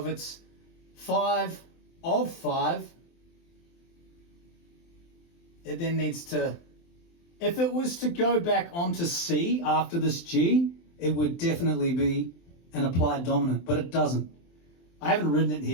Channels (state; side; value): late; right; 23 ms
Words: it's 5 of 5, it then needs to, if it was to go back onto C after this G, it would definitely be an applied dominant, but it doesn't. I haven't written it